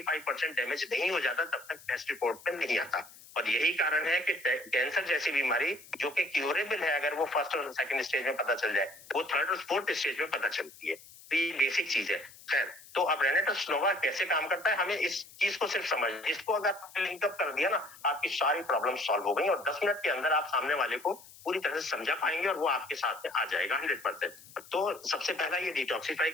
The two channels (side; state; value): left; noise; hiss, 21 dB below the sound